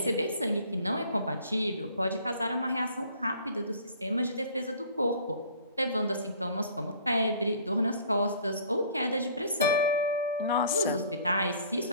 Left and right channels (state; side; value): inverted; both; correlation -0.53